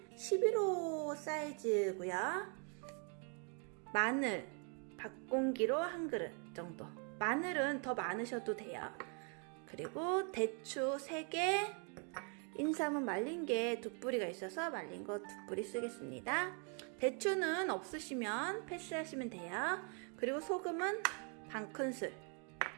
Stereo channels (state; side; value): quieter; left; 39.1 dB